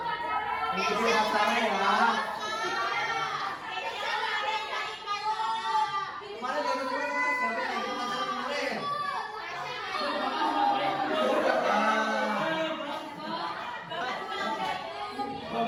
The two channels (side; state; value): both; identical; correlation 1.00